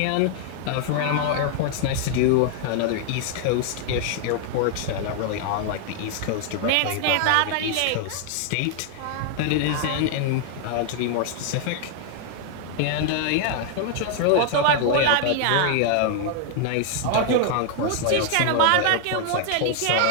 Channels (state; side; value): different; both; correlation 0.00